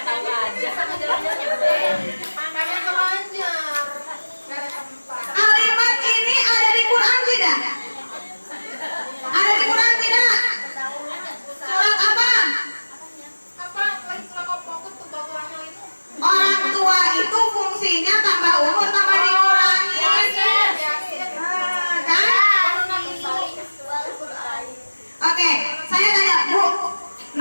ini ada di Quran tidak? Ada di Quran tidak? Surat apa? Orang tua itu fungsinya tambah umur tambah dikurangi. Kan? Oke, saya tanya Bu,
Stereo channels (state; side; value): inverted; both; correlation -1.00